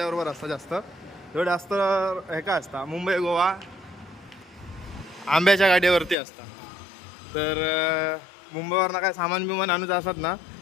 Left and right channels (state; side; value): drops out; right; at 6.2 s